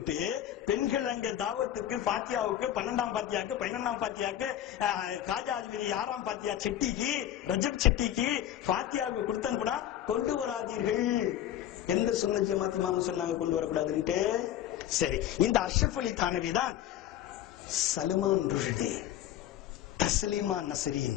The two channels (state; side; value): quieter; right; 11.6 dB